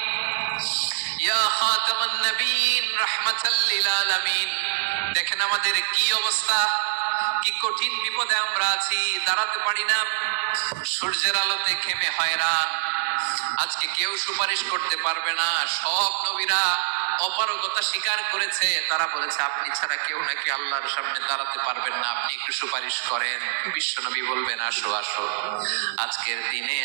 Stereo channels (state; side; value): silent; left; digital silence